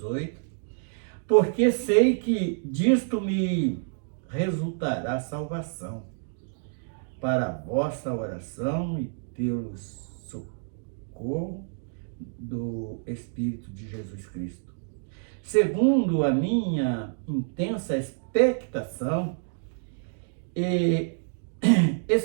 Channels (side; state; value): left; silent; digital silence